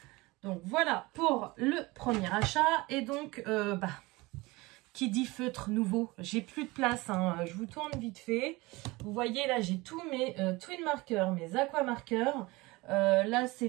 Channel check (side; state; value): left; quieter; 22.4 dB